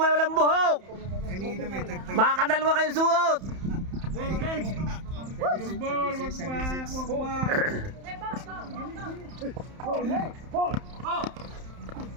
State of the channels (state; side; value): late; left; 31 ms